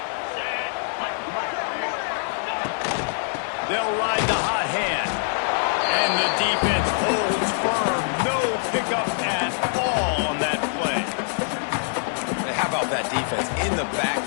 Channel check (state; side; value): silent; right; 58 dB below the other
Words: They'll ride the hot hand. And the defense holds firm. No pickup at all on that play. How about that defense in the